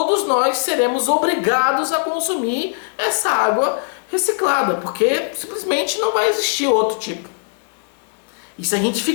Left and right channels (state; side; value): silent; right; digital silence